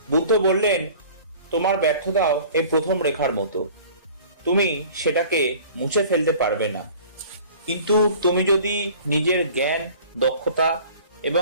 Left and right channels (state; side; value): inverted; both; correlation -0.46